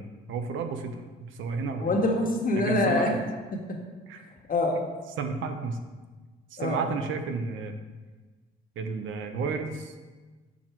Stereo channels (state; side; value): normal; both; correlation 0.39